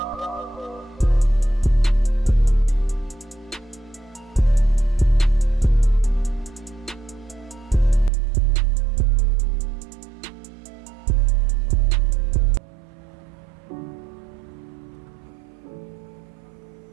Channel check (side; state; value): left; drops out; at 8.1 s